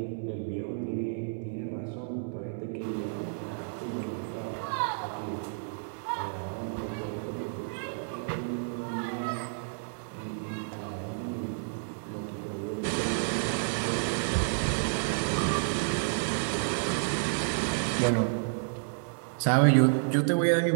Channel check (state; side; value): silent; left; digital silence